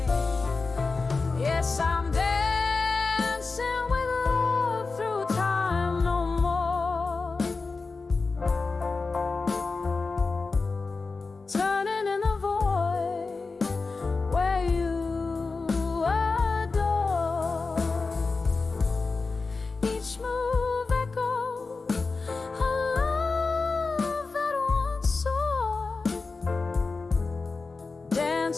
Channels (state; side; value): quieter; right; 4.1 dB